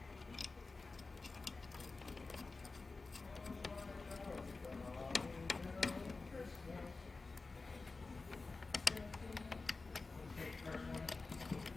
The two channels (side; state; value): right; quieter; 3.8 dB